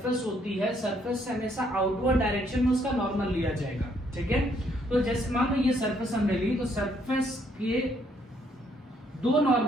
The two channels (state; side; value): normal; both; correlation 0.69